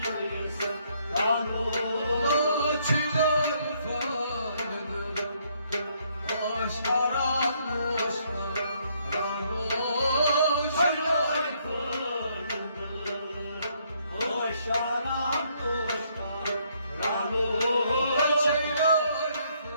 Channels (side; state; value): both; inverted; correlation -0.70